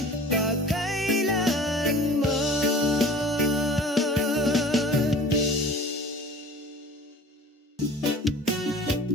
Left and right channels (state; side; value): normal; both; correlation 0.43